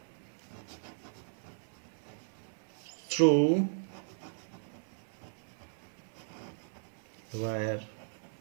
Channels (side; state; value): left; silent; 53 dB below the other